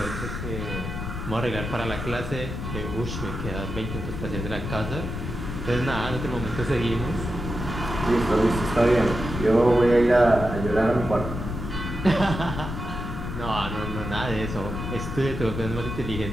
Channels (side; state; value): left; noise; rumble, 6 dB below the sound